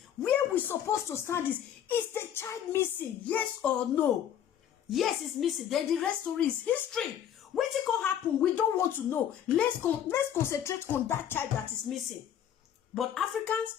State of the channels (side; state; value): right; quieter; 9.8 dB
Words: where we supposed to stand is the child missing? Yes or no? Yes, it's missing. Then the rest story is history. What it can happen, we don't want to know. Let's concentrate on that child that is missing. But